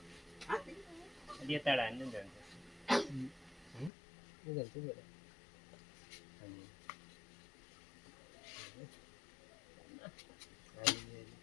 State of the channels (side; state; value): right; drops out; at 3.9 s